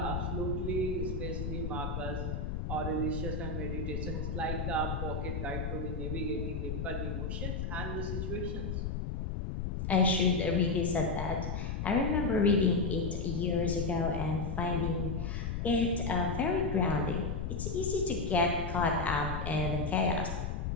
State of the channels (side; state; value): left; noise; rumble, 2 dB below the sound